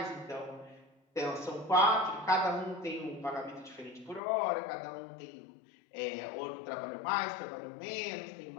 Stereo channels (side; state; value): right; drops out; at 4.2 s